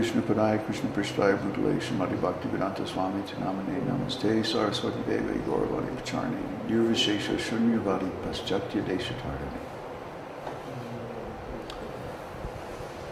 Padaya Krishna Prishtaya Bhutale Srimati Bhaktivedanta Swami Tinamane Namaste Saraswati Devi Gauravani Pacharni Nirvishesha Shunyavadi Paschatya Deshatardani.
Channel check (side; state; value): both; identical; correlation 1.00